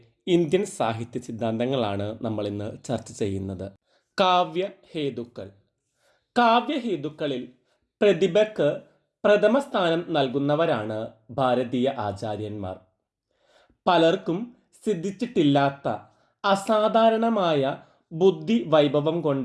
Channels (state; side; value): identical; both; correlation 1.00